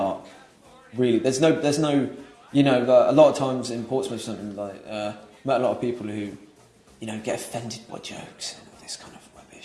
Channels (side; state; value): both; identical; correlation 1.00